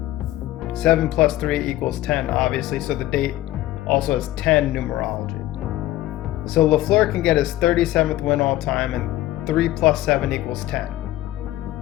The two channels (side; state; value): right; quieter; 15.3 dB